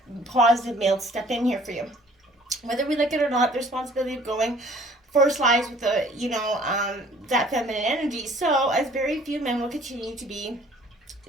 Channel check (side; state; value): both; normal; correlation 0.54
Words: positive male to step in here for you. Whether we like it or not, the responsibility of going first lies with the, that feminine energy. So, as very few men will continue to be,